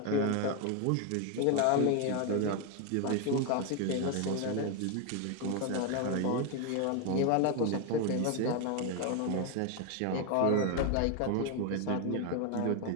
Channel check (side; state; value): both; different; correlation 0.01